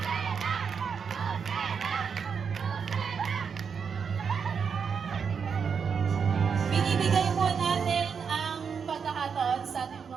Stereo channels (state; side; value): quieter; left; 6.3 dB